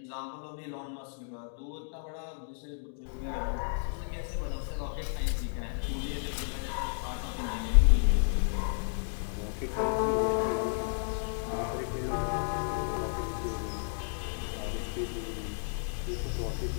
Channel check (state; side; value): silent; right; digital silence